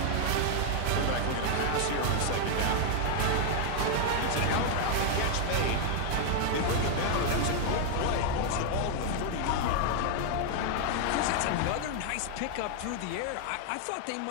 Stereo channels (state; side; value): different; both; correlation 0.00